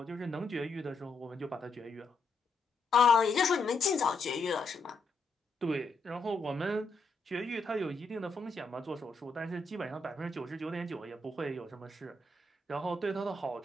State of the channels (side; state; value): right; quieter; 3.2 dB